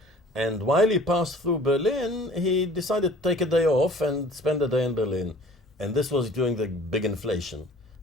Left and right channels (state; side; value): normal; both; correlation 0.48